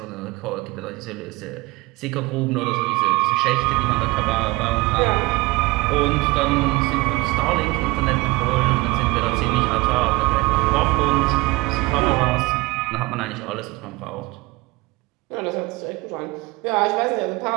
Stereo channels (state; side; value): quieter; left; 22.8 dB